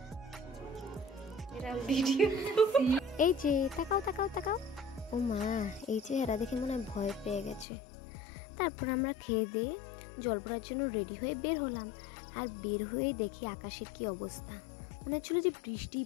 এই যে তাকাও তাকাও তাকাও, ও মা, এই চেহারা দেখে মনে হয় ভয় পেয়ে গেছে। তারপর আমরা খেয়ে দিয়ে জল পড়ার জন্য রেডি হয়ে বের হলাম, আর বের হয়ে দেখি আকাশের কি অবস্থা, মনে হচ্ছিল যে বৃষ্টিই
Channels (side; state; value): right; drops out; at 7.7 s